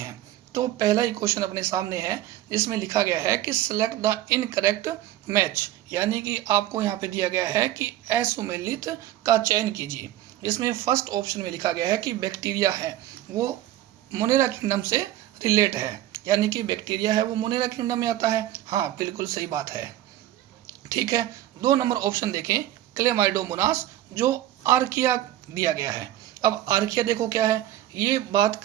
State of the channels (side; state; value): left; quieter; 13.8 dB